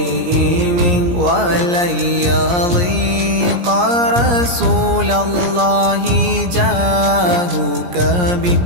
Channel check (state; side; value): late; left; 17 ms